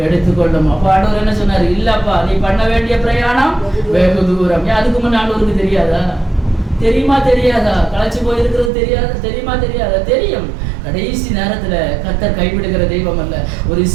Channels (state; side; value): drops out; left; at 8.7 s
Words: எடுத்துக்கொள்ளும். அப்ப ஆண்டவர் என்ன சொன்னாரு? இல்லப்பா, நீ பண்ண வேண்டிய பிரயாணம் வெகு தூரம். அதுக்கு முன்ன ஆண்டவருக்கு தெரியாதா? தெரியுமா தெரியாதா? களைச்சு போயிருக்கிறது தெரியாதா? தெரியுமா தெரியாதா? தெரியும். கடைசி நேரத்துல கர்த்தர் கைவிடுகிற தெய்வம் அல்ல. ஒரு